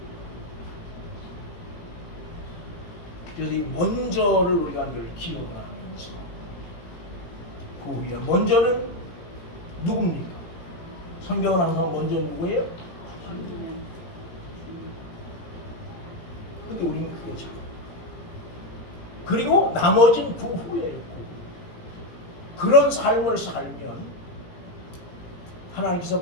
그래서 이 먼저를 우리가 늘 기억을 하면서 그 후에 먼저는 누굽니까? 성경은 항상 먼저 누구예요? 근데 우리는 그게 잘 그리고 나머지는 그 후에요. 그런 삶을 살면 하나님께서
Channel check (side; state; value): right; late; 18 ms